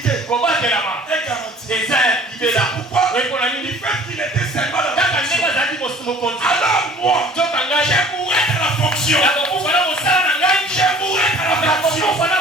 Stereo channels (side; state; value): both; normal; correlation 0.49